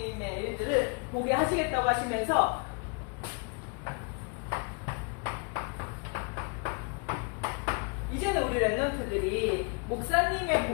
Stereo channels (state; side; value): quieter; right; 34.6 dB